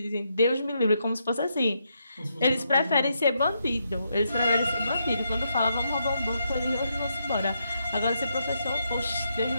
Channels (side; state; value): both; inverted; correlation -0.80